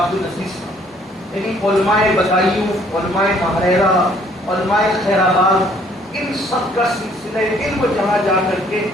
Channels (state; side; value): normal; both; correlation 0.61